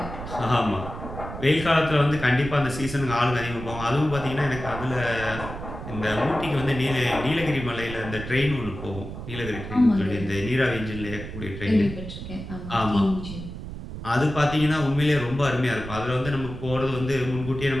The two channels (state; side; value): noise; right; rumble, 9 dB below the sound